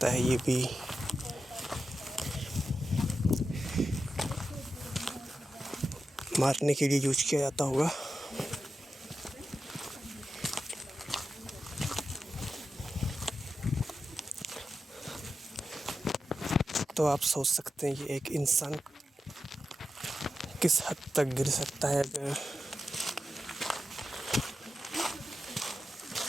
है ये भी मारने के लिए यूज किया जाता होगा। तो आप सोच सकते हैं कि एक इंसान किस हद तक गिर सकता है अगर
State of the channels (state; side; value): normal; both; correlation 0.90